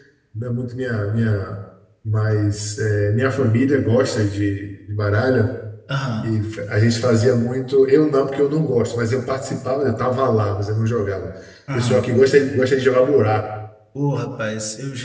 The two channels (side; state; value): both; identical; correlation 1.00